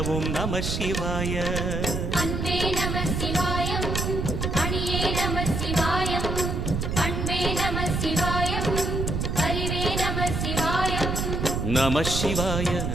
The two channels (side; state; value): right; noise; rumble, 1 dB below the sound